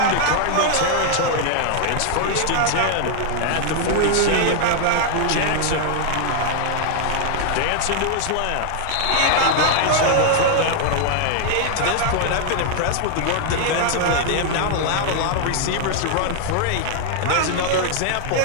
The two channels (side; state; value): both; different; correlation 0.00